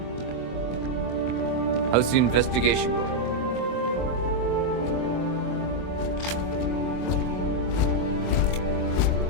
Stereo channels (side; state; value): right; late; 24 ms